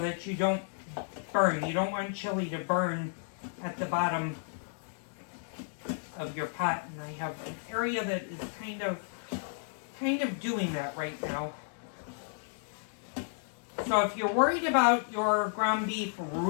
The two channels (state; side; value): silent; right; digital silence